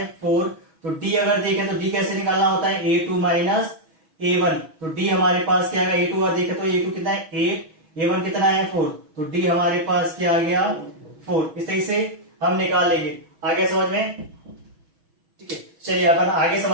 4। तो डी अगर देखें तो डी कैसे निकालना होता है? a2 माइनस a1, तो डी हमारे पास क्या आएगा? a2 अगर देखें तो a2 कितना है? 8, a1 कितना है? 4, तो डी हमारे पास क्या आ गया? 4। इस तरीके से हम निकाल लेंगे। आगे समझ में? ठीक है, चलिए अपन आगे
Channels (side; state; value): left; late; 6.2 ms